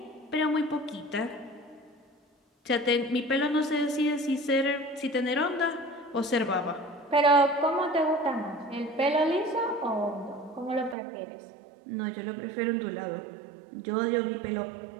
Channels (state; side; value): drops out; left; at 11.0 s